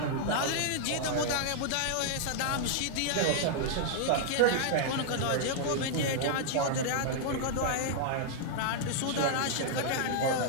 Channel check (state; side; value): different; both; correlation -0.01